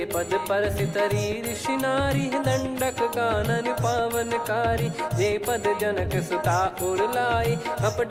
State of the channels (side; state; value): both; identical; correlation 1.00